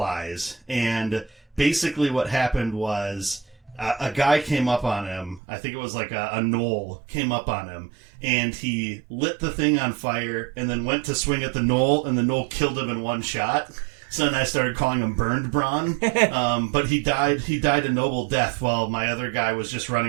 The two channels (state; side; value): drops out; left; at 5.4 s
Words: and basically what happened was... a guy came up on him. I think it was like a gnoll came up on him, and he lit the thing on fire and then went to swing at the gnoll, and the gnoll killed him in 1 shot. So then I started calling him Burned Braun. But he died a noble death while my other guy was just